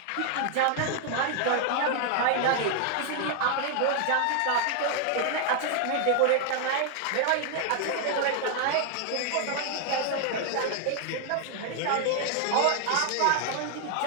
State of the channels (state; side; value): different; both; correlation 0.00